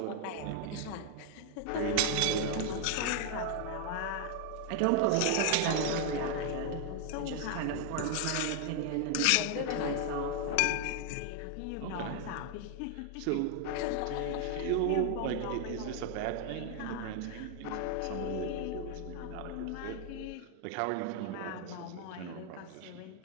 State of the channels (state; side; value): different; both; correlation 0.00